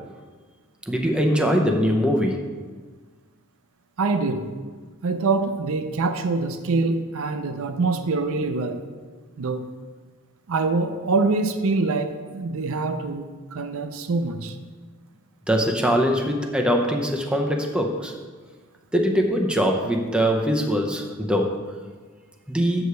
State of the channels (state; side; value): normal; both; correlation 0.53